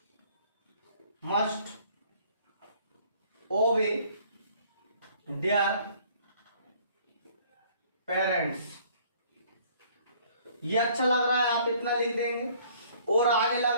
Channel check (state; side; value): inverted; both; correlation -0.58